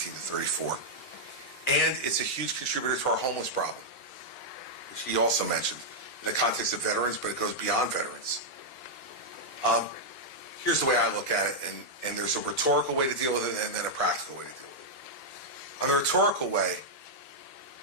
34. And it's a huge contributor to our homeless problem, which he also mentioned in the context of veterans, but it goes beyond veterans. Here's the way I look at it, and there's a rhetorical way to deal with it and then a practical way to deal with it. On the rhetorical way,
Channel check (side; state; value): both; normal; correlation -0.05